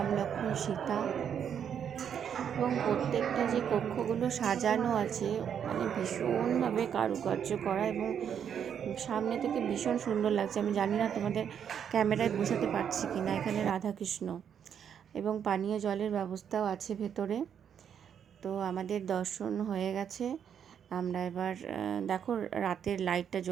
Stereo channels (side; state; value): left; quieter; 8.3 dB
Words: লক্ষ্মণ সীতা, এবং প্রত্যেকটা যে কক্ষগুলো সাজানো আছে মানে ভীষণভাবে কারুকার্য করা, এবং সামনে থেকে ভীষণ সুন্দর লাগছে। আমি জানি না তোমাদের ক্যামেরায় বোঝাতে পারছি কি না। এখানে রাধাকৃষ্ণ এবং পানীয় জলের ব্যবস্থাও আছে ভেতরে। তো আমাদের দর্শন হয়ে গেছে। আমরা এবার দেখো রাতের লাইটটা